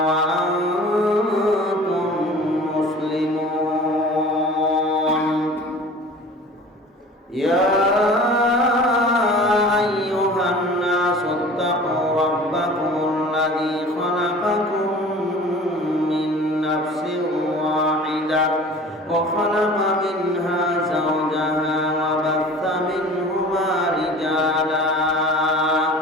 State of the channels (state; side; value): normal; both; correlation 0.43